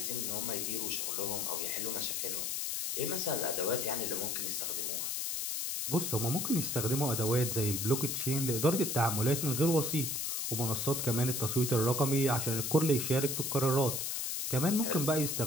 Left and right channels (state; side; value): noise; left; hiss, 1 dB below the sound